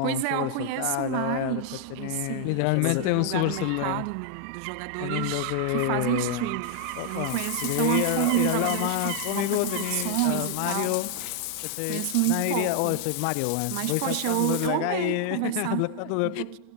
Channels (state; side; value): different; both; correlation 0.00